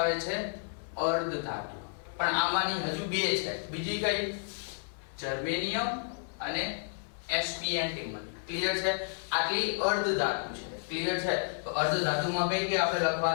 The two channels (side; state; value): right; silent; digital silence